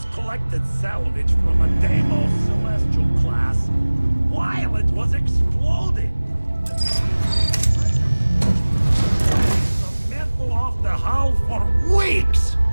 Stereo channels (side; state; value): both; inverted; correlation -1.00